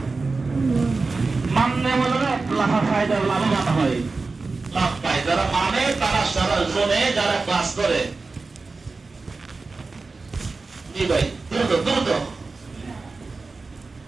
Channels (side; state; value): left; quieter; 3.9 dB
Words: মাননে বলে লাভা ফায়দা, লাভবান হয়, লাভ পায় যারা মানে, তারা সারা জোনে যারা ক্লাস করে। জি ভাই দ্রুত দ্রুত